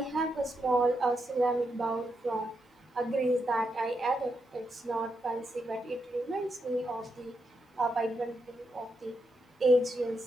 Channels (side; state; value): both; normal; correlation 0.83